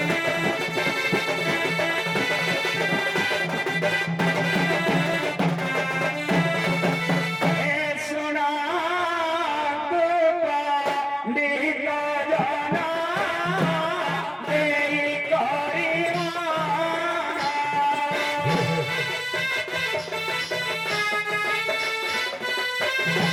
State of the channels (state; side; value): identical; both; correlation 1.00